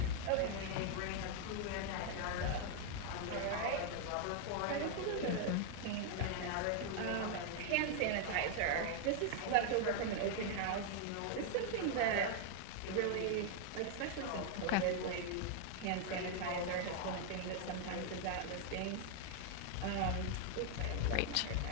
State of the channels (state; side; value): different; both; correlation 0.00